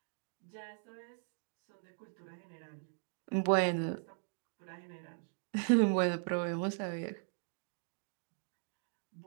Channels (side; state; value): left; silent; digital silence